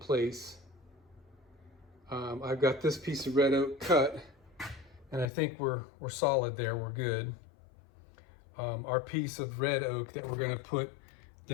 I've got this piece of red oak cut, and I think we're solid there, we're good. Our piece of red oak that we're gonna put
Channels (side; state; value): right; drops out; at 5.3 s